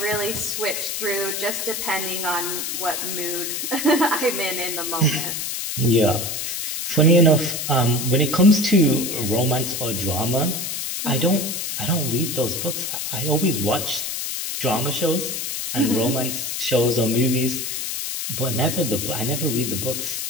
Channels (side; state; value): left; noise; hiss, 3 dB below the sound